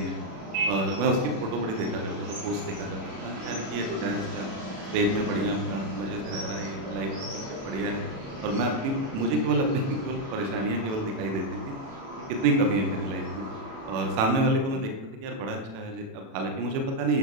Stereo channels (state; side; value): late; left; 36 ms